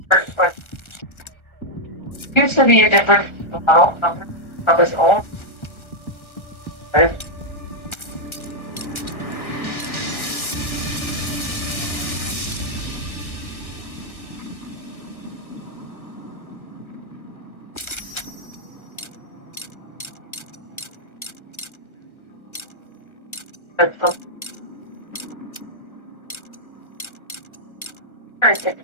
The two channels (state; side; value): late; right; 1.3 ms